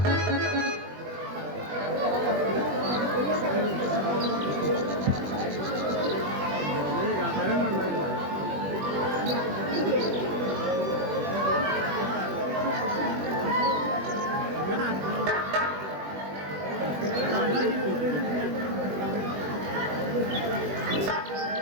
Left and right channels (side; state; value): left; late; 21 ms